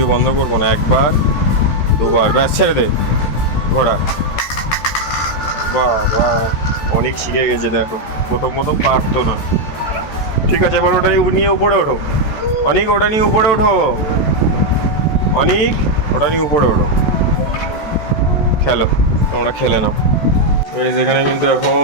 বন্ধ করবো না, একবার দুবার ব্যাস ছেড়ে দে ঘোড়া। বাহ বাহ। অনেক শিখে গেছে দেখো, প্রথম প্রথম পারতো না। ঠিক আছে, এবার ওটা নিয়ে উপরে ওঠো। অনেক ওটা নিয়ে উপরে ওঠো। অনেক ওটা নিয়ে উপরে ওঠো, খেলো, তোমরা খেলে নাও। যেখানে কিন্তু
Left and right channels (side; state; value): right; late; 14 ms